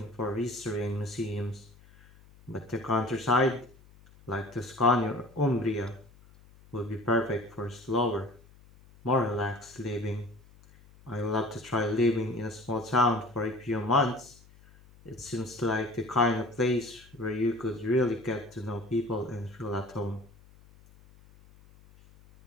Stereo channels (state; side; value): noise; left; hum, 25 dB below the sound